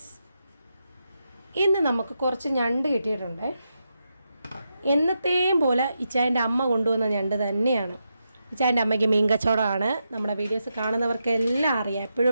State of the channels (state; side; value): inverted; both; correlation -0.85